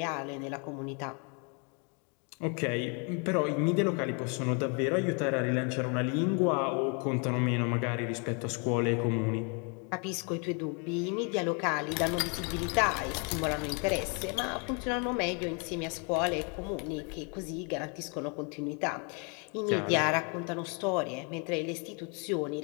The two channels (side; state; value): right; quieter; 35.7 dB